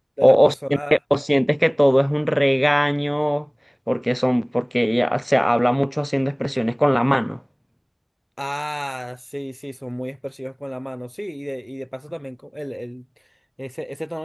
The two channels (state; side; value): identical; both; correlation 1.00